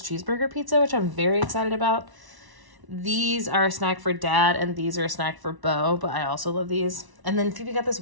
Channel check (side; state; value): left; late; 1.0 ms